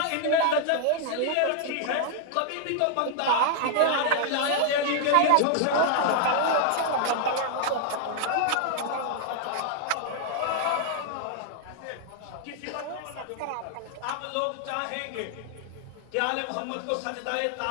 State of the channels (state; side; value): different; both; correlation 0.00